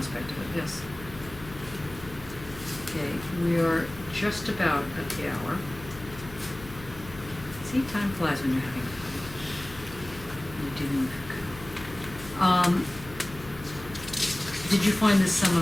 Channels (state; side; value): noise; left; hum, 16 dB below the sound